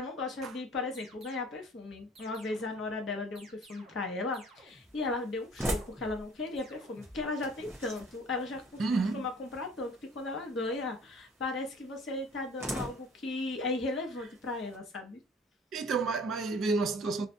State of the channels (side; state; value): both; normal; correlation 0.50